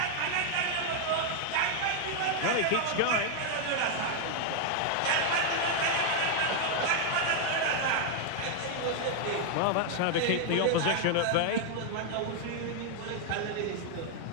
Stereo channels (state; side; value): different; both; correlation 0.00